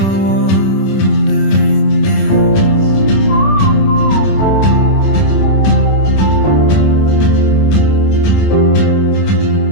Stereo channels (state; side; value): late; right; 26 ms